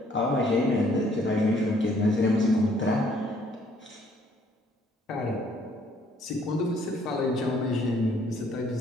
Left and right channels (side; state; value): both; normal; correlation 0.63